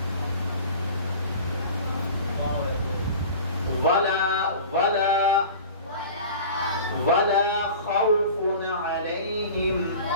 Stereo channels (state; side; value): inverted; both; correlation -0.39